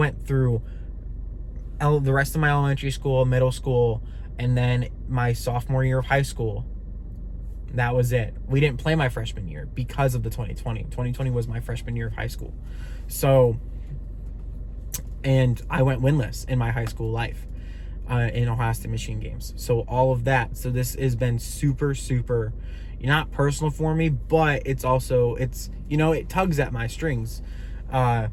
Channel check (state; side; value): identical; both; correlation 1.00